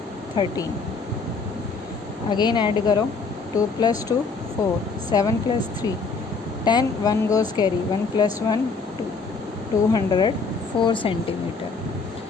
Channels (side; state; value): right; quieter; 4.4 dB